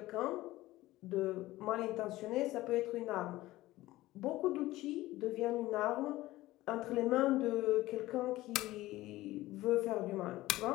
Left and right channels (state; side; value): quieter; right; 17.2 dB